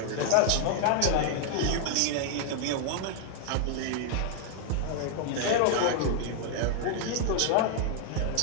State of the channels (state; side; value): different; both; correlation 0.00